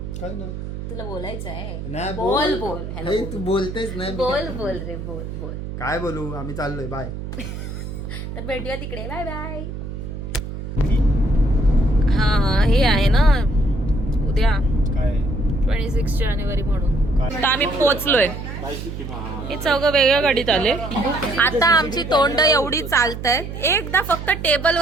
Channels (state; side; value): noise; right; hum, 8 dB below the sound